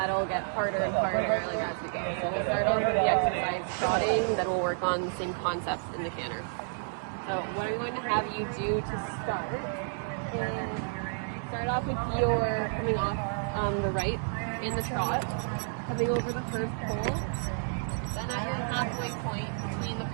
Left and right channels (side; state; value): left; silent; digital silence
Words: get harder and harder as we go. So we'll start off with the exercise trotting, then we'll work on the same concepts in the canter. So what I'm going to have you do to start is start off with your coming off the right in the trot, coming over the first pole. Then at your halfway point between the